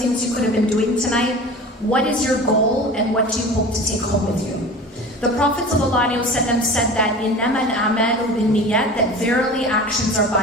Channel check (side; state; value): both; normal; correlation 0.37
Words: you could have been doing tonight. What is your goal and what do you hope to take home with you? The Prophet ﷺ said that إِنَّمَا الْأَعْمَالُ بِالنِّيَّةِ, that verily actions are